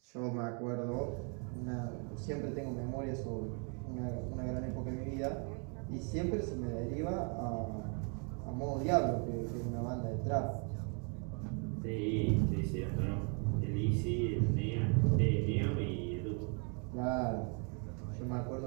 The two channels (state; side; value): quieter; left; 38.3 dB